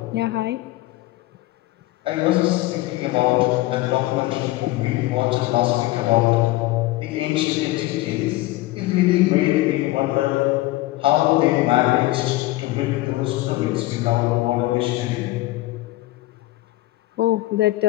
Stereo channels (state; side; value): quieter; right; 18.2 dB